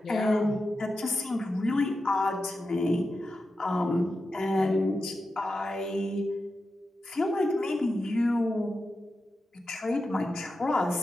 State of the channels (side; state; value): both; normal; correlation 0.90